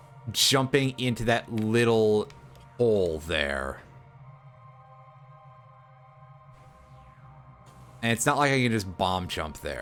jumping into that little hole there. And it's not like I can just bomb jump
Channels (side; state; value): both; identical; correlation 1.00